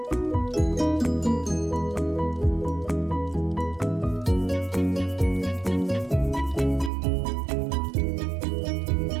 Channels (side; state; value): left; drops out; at 6.9 s